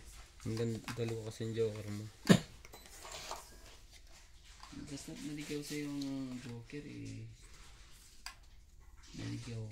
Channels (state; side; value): identical; both; correlation 1.00